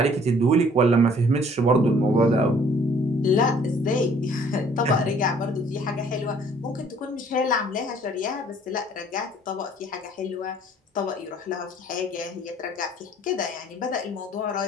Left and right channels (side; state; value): both; normal; correlation 0.57